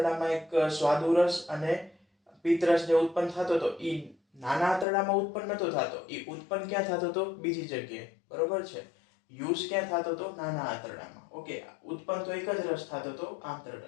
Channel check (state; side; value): drops out; right; at 4.9 s